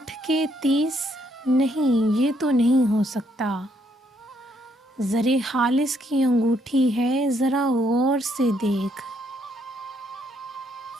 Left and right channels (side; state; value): both; normal; correlation 0.72